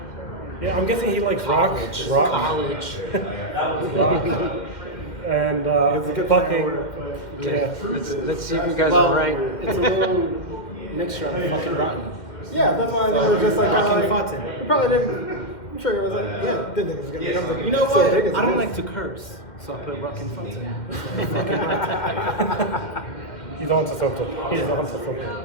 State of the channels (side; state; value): right; late; 2.1 ms